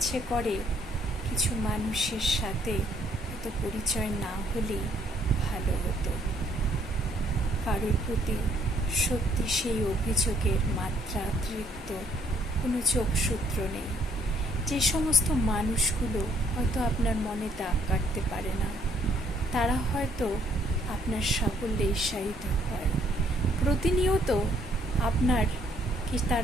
করে কিছু মানুষের সাথে হয়তো পরিচয় না হলেই ভালো হতো। কারোর প্রতি সত্যি সেই অভিযোগের মাত্রাতিরিক্ত কোনো যোগসূত্র নেই। যে সমস্ত মানুষগুলো হয়তো আপনার মনে দাগ কাটতে পারে না, তারা হয়তো আপনার সাফল্যে ঈর্ষায়িত হয়। প্রতিনিয়ত আপনার কি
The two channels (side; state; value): both; normal; correlation 0.66